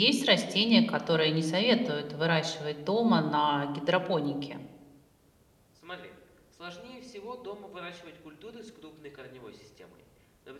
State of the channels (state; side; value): identical; both; correlation 1.00